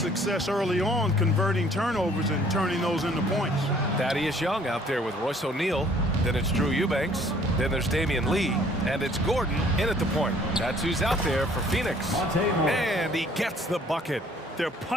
early on converting turnovers and turning those into points. Thaddeus Young out there with Royce O'Neal. Then it's Drew Eubanks. Then there's Damian Lee. And it's Gordon in at the point. That's who's out there for Phoenix. And he gets the bucket. They're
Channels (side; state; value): both; normal; correlation 0.58